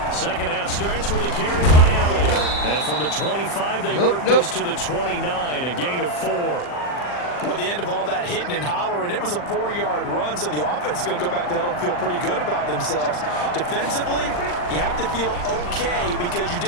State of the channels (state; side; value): late; right; 40 ms